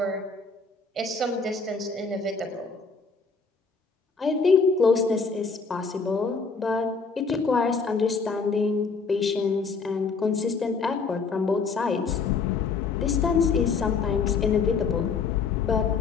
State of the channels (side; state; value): right; quieter; 4.9 dB